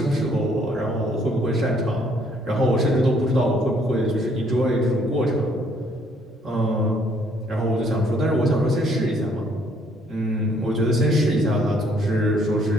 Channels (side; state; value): both; normal; correlation 0.65